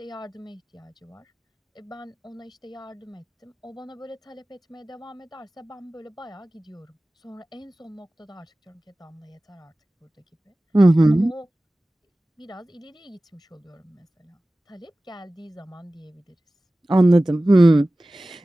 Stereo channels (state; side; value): normal; both; correlation 0.97